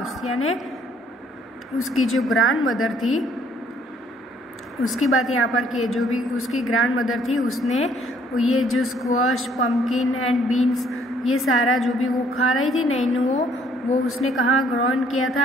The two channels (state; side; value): normal; both; correlation 0.63